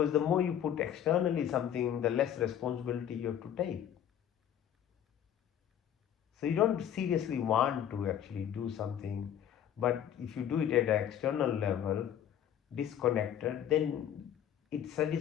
the more you put externally something, the less responsibility you have to take. So you don't seriously want to actually do something, but if you do it at an external level, disconnected, then it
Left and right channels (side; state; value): right; quieter; 10.0 dB